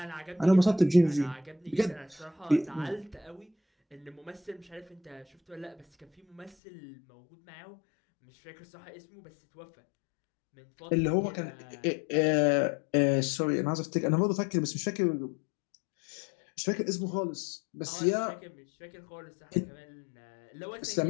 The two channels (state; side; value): drops out; right; at 6.6 s